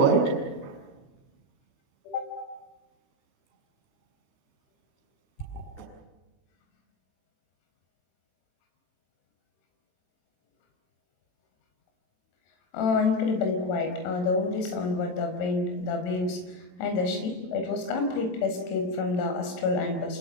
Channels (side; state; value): right; late; 22 ms